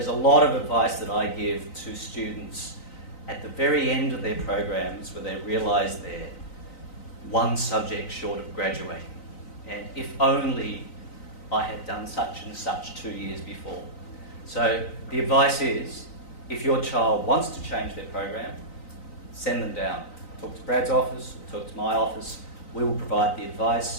a lot of advice that I give to students at the very end of their programs where they realise they're one subject short of graduating. And if only I had done such and such 2 years before. So the advice is, if your child wants to change their program, send them down. Talk to Brad's office, talk to my office. We will provide the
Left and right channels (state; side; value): late; right; 3.9 ms